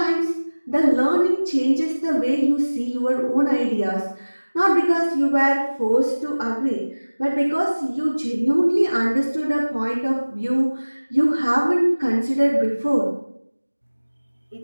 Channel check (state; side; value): inverted; both; correlation -1.00